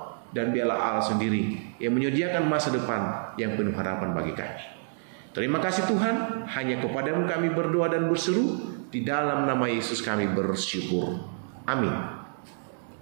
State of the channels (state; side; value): silent; left; digital silence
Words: Dan biarlah Allah sendiri yang menyediakan masa depan yang penuh harapan bagi kami. Terima kasih Tuhan, hanya kepadamu kami berdoa dan berseru, di dalam nama Yesus kami bersyukur. Amin.